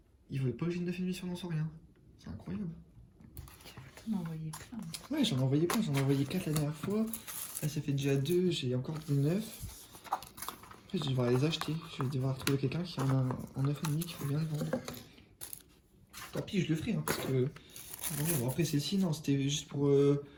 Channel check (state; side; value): identical; both; correlation 1.00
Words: Il voulait pas que j'ai une 9,5 sur lanceur. C'est incroyable. T'en as envoyé plein. Ouais, j'en ai envoyé plein. J'en ai envoyé 4 la dernière fois. Là, ça fait déjà 2. J'ai encore des 9. Après, je vais devoir les acheter. Je vais devoir trouver quelqu'un qui en a en 9,5 qui veut bien le vendre. Tant pis, je le ferai, hein, parce que... Bon, après, celle-ci, non, c'était juste pour